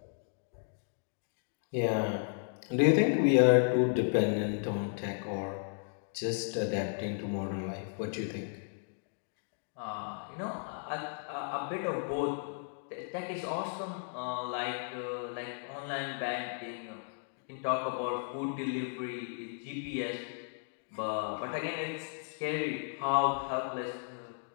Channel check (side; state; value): right; silent; digital silence